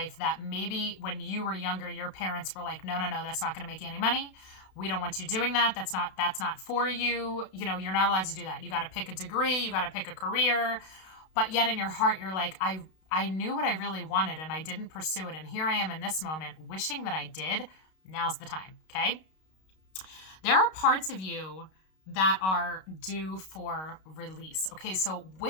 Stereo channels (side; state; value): right; late; 32 ms